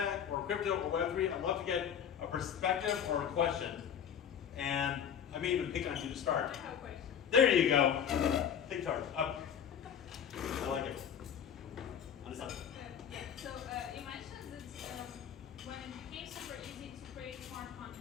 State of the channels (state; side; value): quieter; right; 8.4 dB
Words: or crypto or Web3, I'd love to get a perspective or a question. And I may even pick on you to start. I have a question. There you go. Take charge. Up. I like it. On the side. Yeah, so you mentioned that when it became super easy to create smart